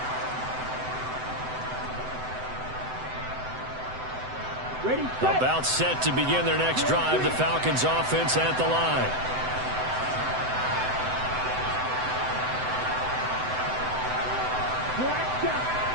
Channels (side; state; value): left; late; 7.9 ms